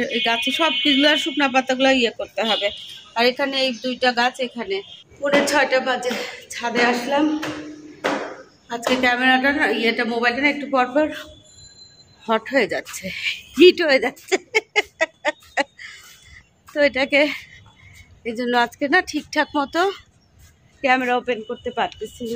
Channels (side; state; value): both; identical; correlation 1.00